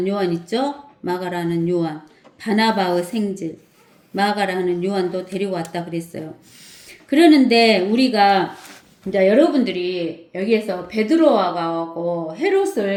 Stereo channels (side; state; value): both; identical; correlation 1.00